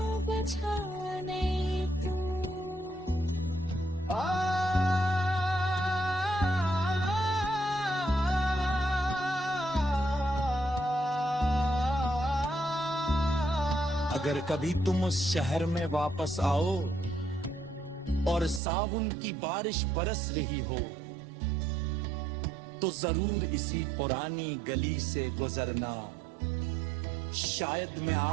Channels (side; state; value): left; drops out; at 18.6 s